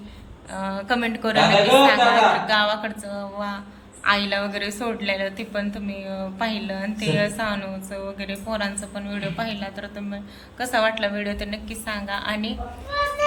कमेंट करून नक्की सांगा. गावाकडचं आईला वगैरे सोडलेलं ते पण तुम्ही पाहिलं, आणि ते सानूचं वगैरे पोरांचं पण व्हिडिओ पाहिला, तर तुम्ही कसा वाटला व्हिडिओ ते नक्की सांगा. आणि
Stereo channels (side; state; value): both; identical; correlation 1.00